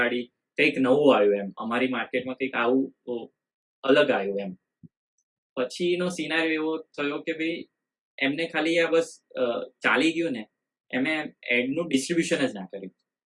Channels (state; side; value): identical; both; correlation 1.00